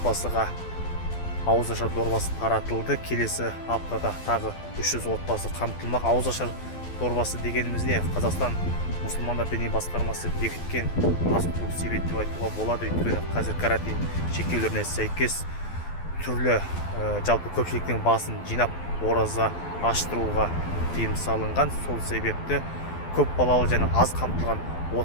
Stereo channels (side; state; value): right; late; 12 ms